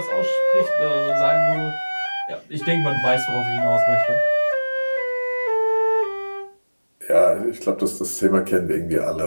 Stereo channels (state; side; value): inverted; both; correlation -1.00